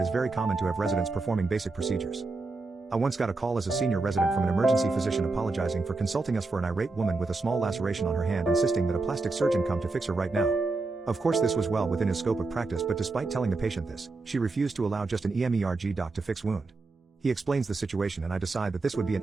is very common to have residents performing basic procedures. I once got a call as a senior resident from an emergency physician apologizing for consulting us for an irate woman with a small laceration on her hand, insisting that a plastic surgeon come to fix her right now. Of course, this was well within his scope of practice, but despite telling the patient this, she refused to allow just an EMERG doc to fix wound. He explains the situation and I decide that this would be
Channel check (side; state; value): left; quieter; 3.6 dB